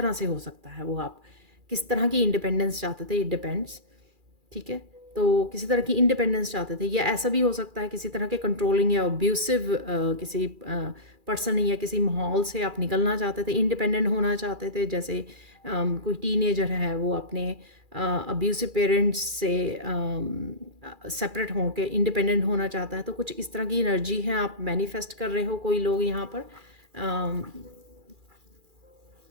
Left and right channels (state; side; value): late; left; 2.4 ms